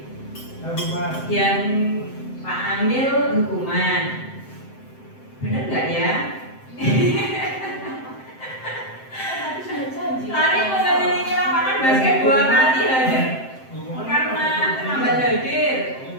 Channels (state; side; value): late; right; 7.7 ms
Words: yang Pak Amil hukuman. Bener nggak ya? Lari mengelilingi lapangan basket 2 kali hadir karena terlambat hadir.